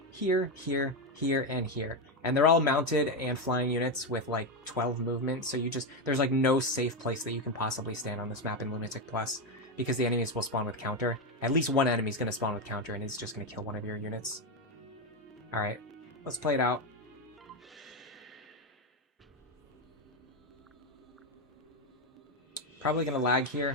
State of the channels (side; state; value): both; normal; correlation 0.09